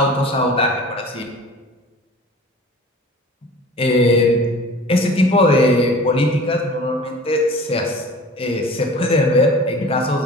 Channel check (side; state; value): both; normal; correlation 0.42